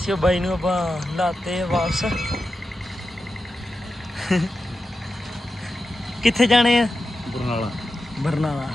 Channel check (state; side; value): normal; both; correlation 0.91